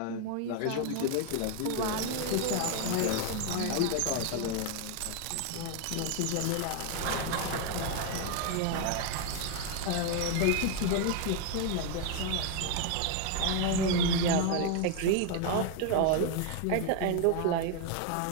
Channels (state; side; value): different; both; correlation 0.01